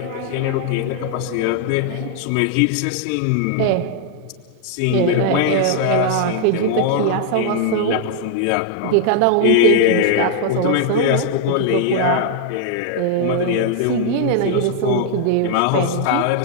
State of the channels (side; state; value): both; different; correlation 0.00